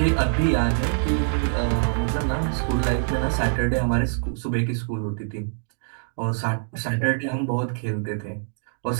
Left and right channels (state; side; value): silent; left; digital silence